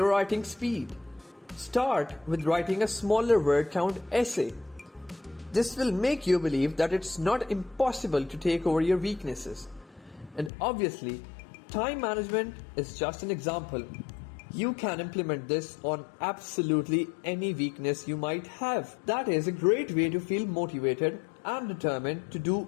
writing speed. Start with writing a smaller word count essay. This will make you believe that it's not impossible to take over your weaknesses. And obviously, time management is just an example. You can implement this on absolutely any weakness you might have. That is a great way to feel motivated and determined to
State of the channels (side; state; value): right; drops out; at 10.5 s